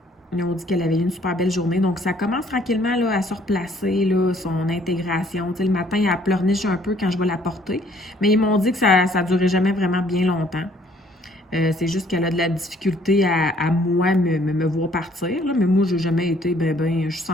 dit qu'elle avait eu une super belle journée. Donc, ça commence tranquillement là, à se replacer, là, son intégration. Tu sais, le matin, elle pleurniche un peu quand je vais la porter. Mais ils m'ont dit que ça ne durait jamais vraiment bien longtemps. C'est juste qu'elle a de la difficulté à moi me voir partir. Là. Mais moi, j'ai jamais été je suis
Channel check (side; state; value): both; normal; correlation 0.61